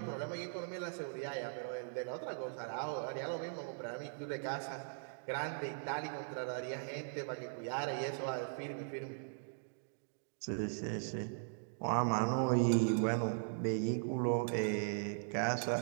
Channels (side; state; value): left; silent; digital silence